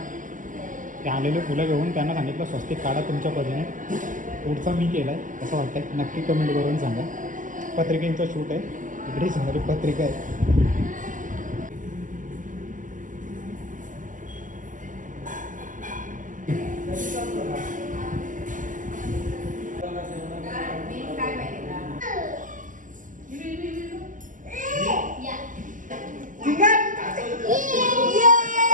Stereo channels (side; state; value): left; late; 0.38 ms